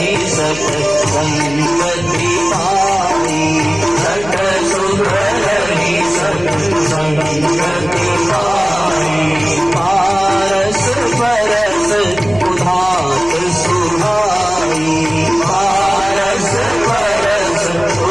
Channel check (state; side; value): noise; left; hum, 14 dB below the sound